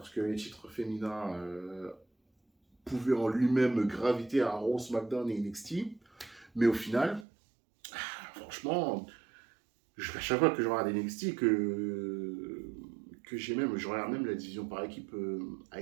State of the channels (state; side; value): drops out; left; at 7.2 s